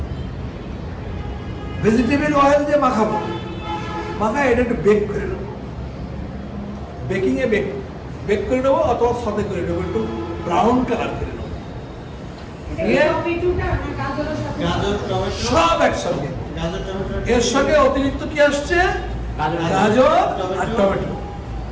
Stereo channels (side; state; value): both; identical; correlation 1.00